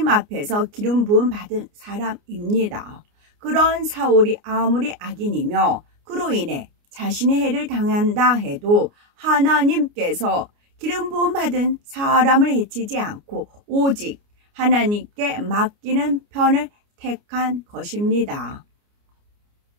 앞에서 기름 부음 받은 사람입니다. 그런 사울이 아무리 악인이며 그로 인해 자신의 해를 당한다 해도 하나님께서 기름 부음 받은 사람을 해치지 않고 오직 하나님께 맡기는 편을 택한 것입니다.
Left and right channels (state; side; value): late; left; 29 ms